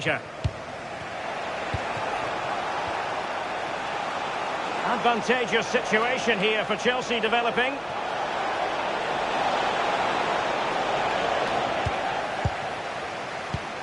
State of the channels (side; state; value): both; identical; correlation 1.00